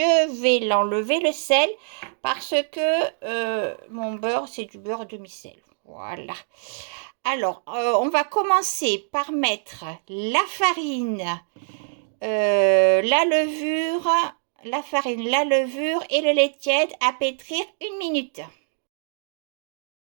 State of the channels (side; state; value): left; silent; digital silence